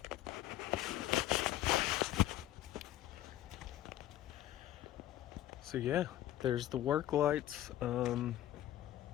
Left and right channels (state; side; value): quieter; right; 13.3 dB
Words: So yeah, there's the work lights.